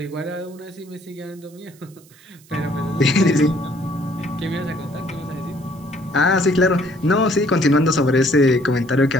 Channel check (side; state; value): right; noise; hiss, 27 dB below the sound